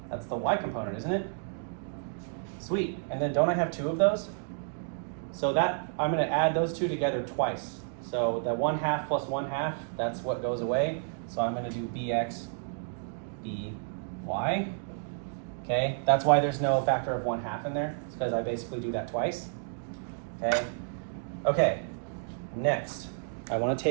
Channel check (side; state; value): left; silent; digital silence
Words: That's the y component, isn't it? Sweet. And then don't I have two of those? So that I'm going to add those two together twice. So the 1/2 plus 1/2, that's what goes away. So I'm going to do bx, by. Okay, that's why there's no factor of 1/2 in there. It's because I basically do that twice. Okay. Okay. Next, I want to